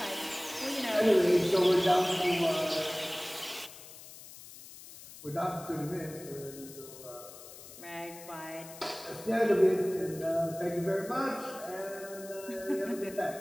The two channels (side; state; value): left; noise; hiss, 16 dB below the sound